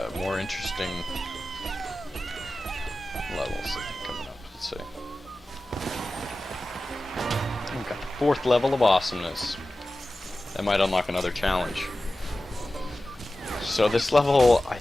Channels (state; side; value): normal; both; correlation 0.95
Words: more interesting levels I think coming up. Let's see. We've got the 4th level of awesomeness. That might unlock another challenge. So this level, I